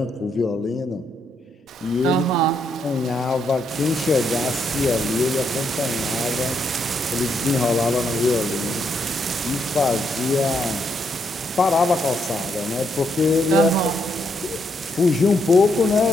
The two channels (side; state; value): both; normal; correlation 0.77